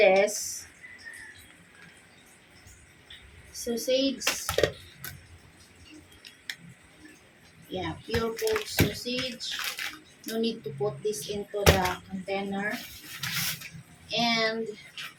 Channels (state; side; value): identical; both; correlation 1.00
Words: Sausage. Yeah, pure pork sausage. No need to put this into the container. And